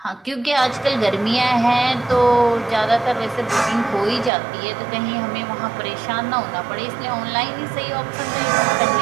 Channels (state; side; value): drops out; left; at 4.3 s